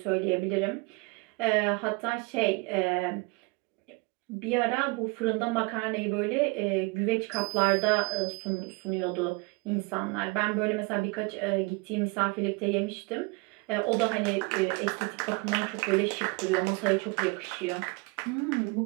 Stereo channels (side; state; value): left; quieter; 27.7 dB